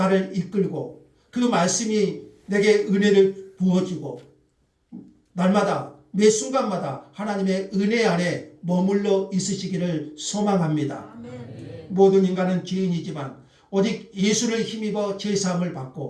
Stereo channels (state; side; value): identical; both; correlation 1.00